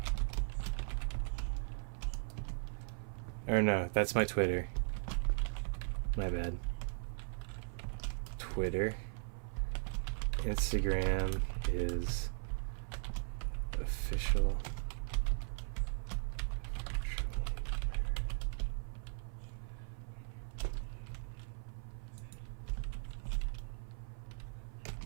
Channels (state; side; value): silent; left; 52 dB below the other